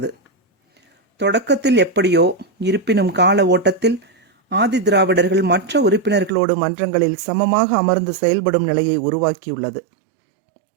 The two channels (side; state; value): left; drops out; at 6.3 s